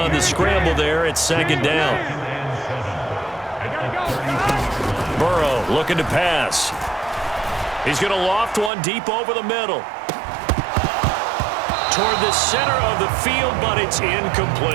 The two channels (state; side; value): drops out; left; at 8.7 s